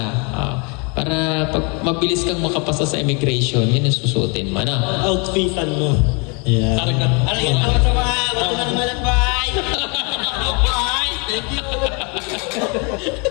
para pag mabilis kang makapasa sa immigration, yan ang susuotin mo, no? Outfitan mo. Yeah. Ano yan?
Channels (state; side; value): quieter; right; 32.8 dB